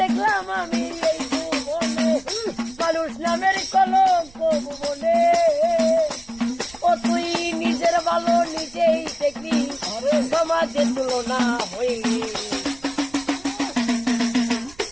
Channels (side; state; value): right; noise; rumble, 23 dB below the sound